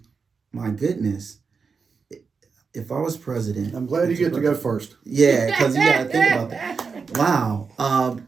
my goodness, if I was president. I'm glad you get to go first. Yeah, because you got to think about that. Wow.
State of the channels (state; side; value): quieter; left; 5.2 dB